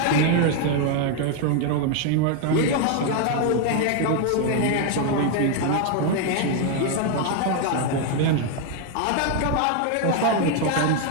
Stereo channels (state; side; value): different; both; correlation 0.01